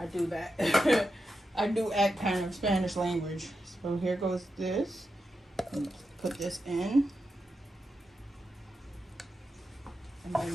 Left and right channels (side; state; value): both; normal; correlation 0.88